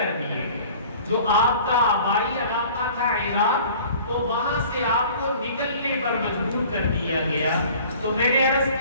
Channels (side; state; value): both; inverted; correlation -0.48